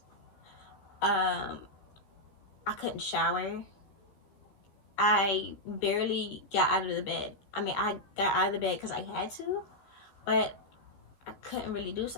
I couldn't shower. I barely got out of the bed. I mean, I got out of the bed because I had to, but I couldn't really do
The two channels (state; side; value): late; right; 15 ms